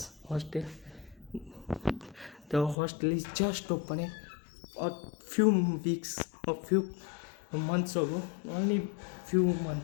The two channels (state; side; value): drops out; right; at 2.8 s